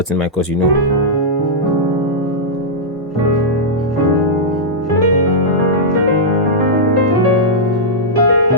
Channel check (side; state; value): both; normal; correlation -0.10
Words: in my course,